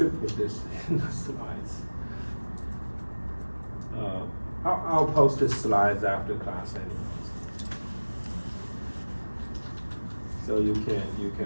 put this in the slides. I'll post the slides after class anyways. So you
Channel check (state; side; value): inverted; both; correlation -1.00